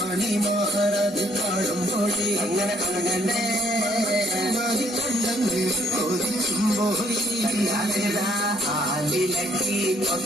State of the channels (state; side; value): normal; both; correlation 0.66